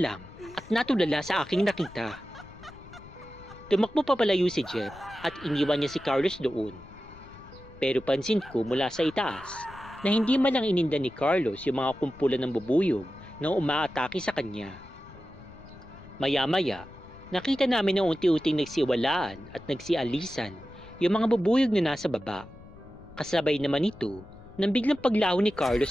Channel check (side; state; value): left; noise; rumble, 20 dB below the sound